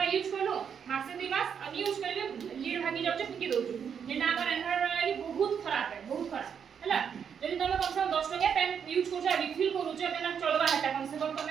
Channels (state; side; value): quieter; left; 7.4 dB